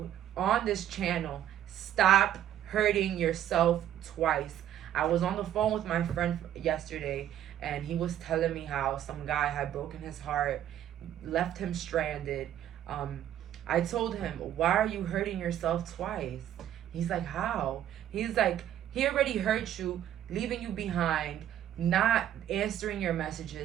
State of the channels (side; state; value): left; quieter; 11.2 dB